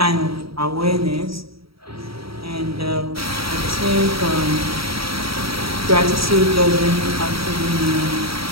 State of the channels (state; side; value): late; left; 0.75 ms